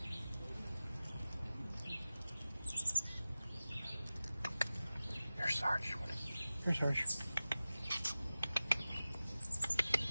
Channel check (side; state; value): both; inverted; correlation -0.96